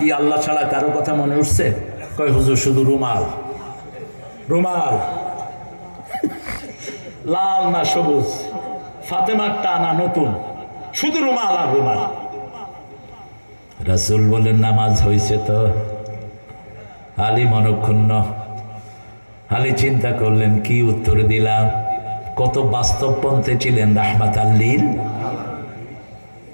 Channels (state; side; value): inverted; both; correlation -1.00